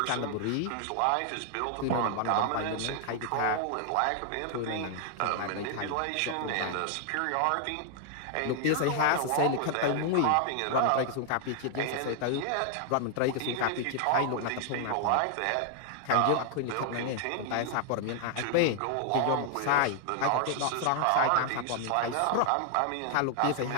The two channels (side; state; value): both; different; correlation 0.00